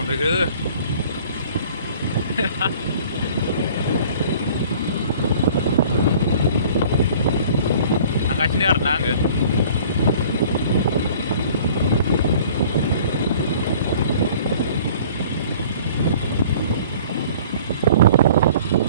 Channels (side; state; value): both; inverted; correlation -0.50